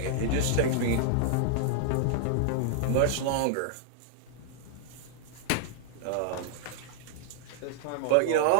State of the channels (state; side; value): different; both; correlation -0.01